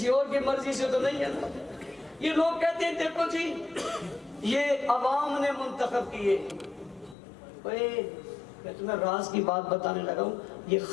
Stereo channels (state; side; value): drops out; right; at 7.2 s